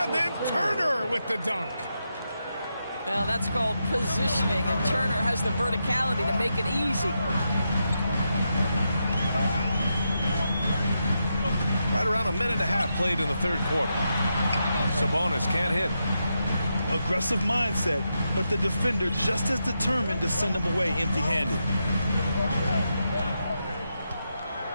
then Turner with the dunk. Well, that's called positioning, and Turner has the verticality to make it easy. Right around a minute and a half played in the third quarter. Sabonis can't hit. Aggressive mindset, but the defender just as determined to send him away empty-handed.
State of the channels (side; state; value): both; inverted; correlation -0.85